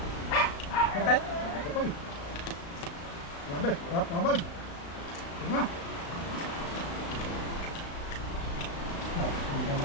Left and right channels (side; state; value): right; late; 35 ms